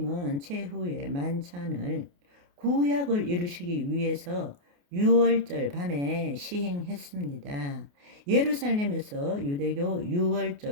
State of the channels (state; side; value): late; left; 28 ms